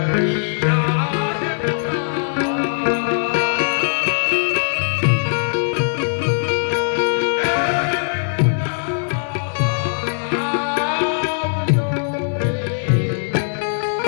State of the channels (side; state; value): right; silent; digital silence